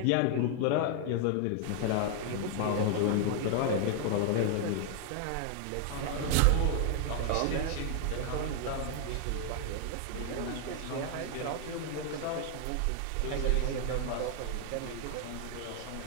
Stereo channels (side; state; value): both; different; correlation 0.00